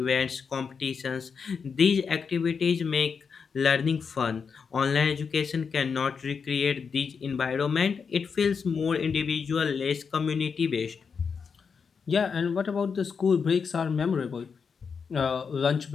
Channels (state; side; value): quieter; right; 5.9 dB